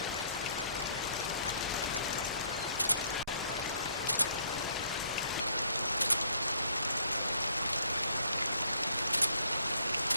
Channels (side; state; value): both; inverted; correlation -0.65